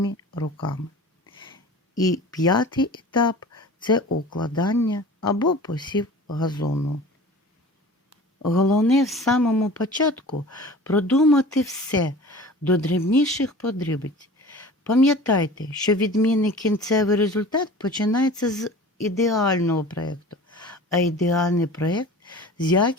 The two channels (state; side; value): normal; both; correlation 0.40